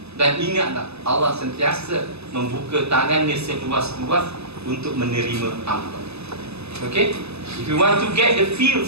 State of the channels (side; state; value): left; late; 0.79 ms